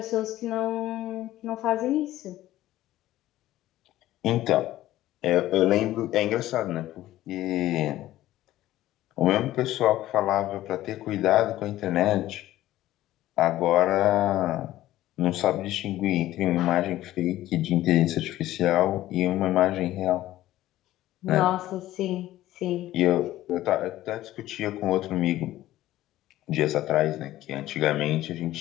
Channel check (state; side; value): quieter; right; 14.8 dB